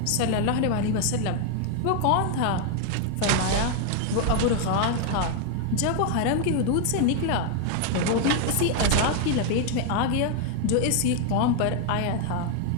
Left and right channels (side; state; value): both; different; correlation 0.00